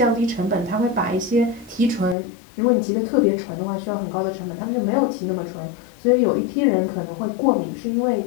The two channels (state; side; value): drops out; right; at 2.1 s